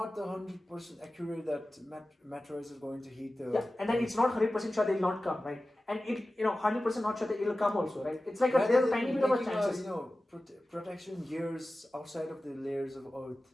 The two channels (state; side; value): normal; both; correlation 0.95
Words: 100% accurate that meteorites are going to hit the. Yeah, and then it's not 100% sure they'll not come, right? And 100% not sure that it'll come also, right? It's like there's a tiny bit of a chances. Protection gears outside of the layers of Earth.